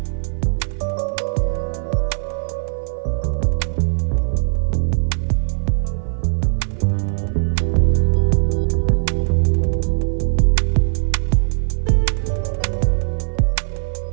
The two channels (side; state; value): left; silent; 56 dB below the other